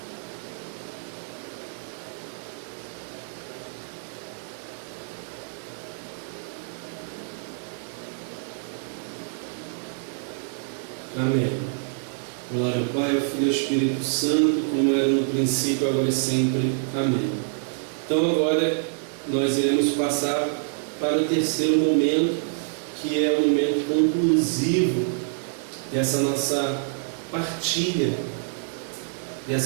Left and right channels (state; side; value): silent; left; digital silence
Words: Amém. Glória ao Pai, ao Filho e ao Espírito Santo, como era no princípio, agora e sempre. Amém. Então agora nós iremos passar para o terceiro momento, que é o momento conclusivo dessa nossa partilha,